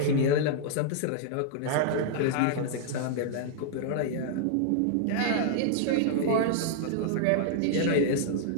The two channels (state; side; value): different; both; correlation -0.01